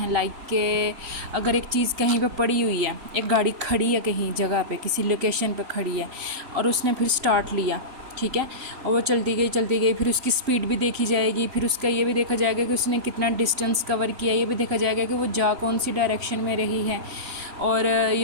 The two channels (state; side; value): late; left; 3.6 ms